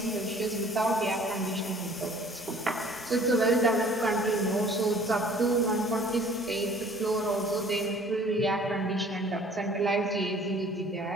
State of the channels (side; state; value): both; normal; correlation 0.53